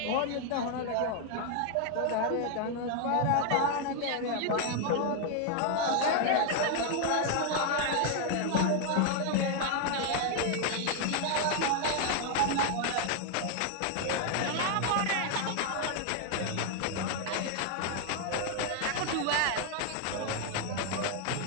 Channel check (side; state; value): both; different; correlation 0.00